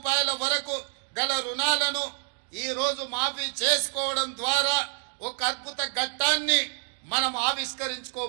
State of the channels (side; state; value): left; silent; digital silence